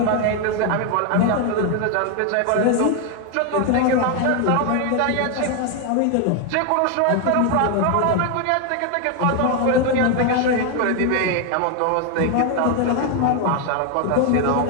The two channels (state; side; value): different; both; correlation 0.01